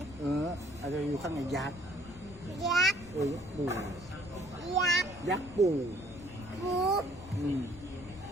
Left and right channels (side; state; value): left; noise; rumble, 17 dB below the sound